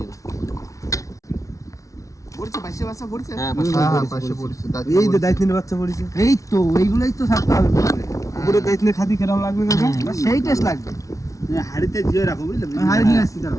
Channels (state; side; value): late; right; 0.16 ms